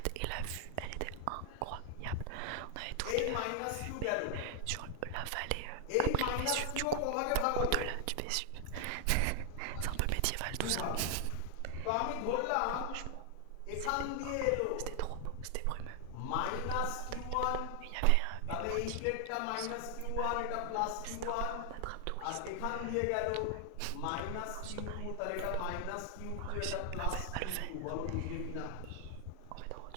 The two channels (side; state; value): both; different; correlation 0.00